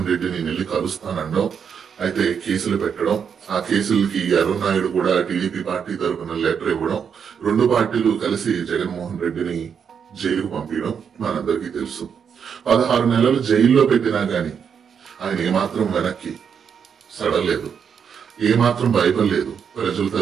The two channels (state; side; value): quieter; left; 7.1 dB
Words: రెడ్డిని నెల్లి కలుస్తానడం, అయితే కేసులు పెట్టడం, ఆ కేసులకి అరుణ్ కూడా టీడీపీ పార్టీ తరఫున లెటర్ ఇవ్వడం, రెండు పార్టీలు కలిసి జగన్మోహన్ రెడ్డిని జైలుకు పంపించడం మనందరికీ తెలుసు. 16 నెలలు జైల్లో పెట్టినా గాని ఆయన ఏమాత్రం వెనక్కి సడలేదు, ఏమాత్రం భయపడలేదు. ప్రజల